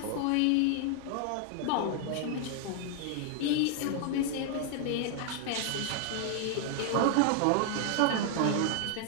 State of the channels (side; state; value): both; different; correlation 0.00